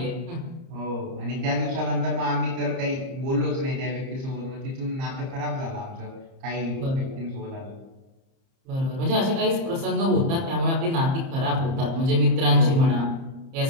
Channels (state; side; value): late; left; 30 ms